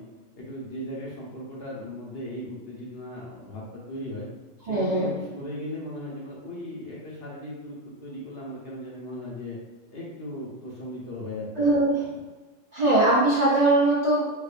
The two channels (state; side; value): normal; both; correlation 0.15